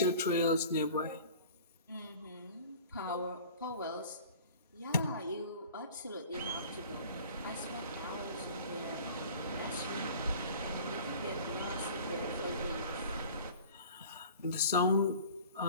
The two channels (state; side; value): inverted; both; correlation -0.44